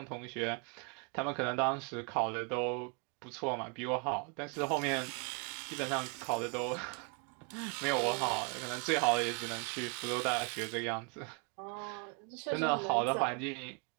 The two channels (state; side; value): quieter; left; 35.1 dB